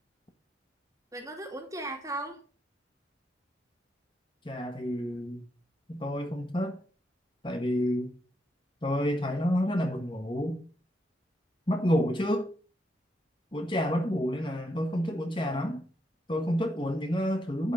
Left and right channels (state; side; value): normal; both; correlation 0.80